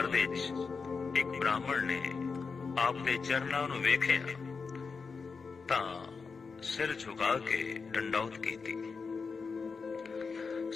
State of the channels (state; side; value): quieter; right; 5.0 dB